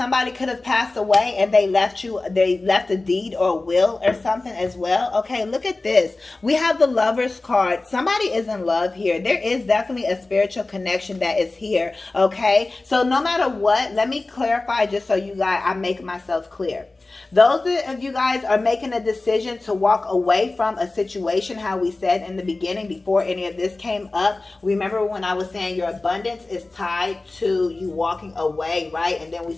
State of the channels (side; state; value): right; quieter; 3.2 dB